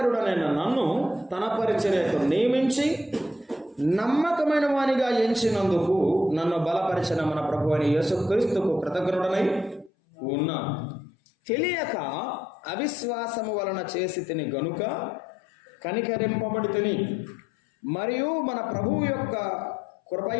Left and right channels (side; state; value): right; drops out; at 9.9 s